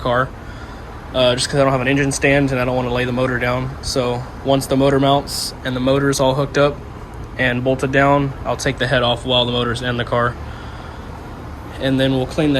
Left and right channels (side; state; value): both; identical; correlation 1.00